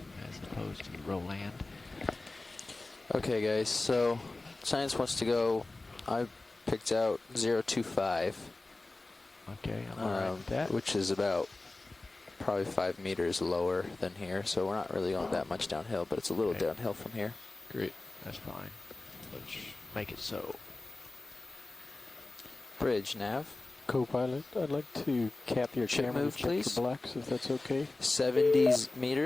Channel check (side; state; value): right; quieter; 3.1 dB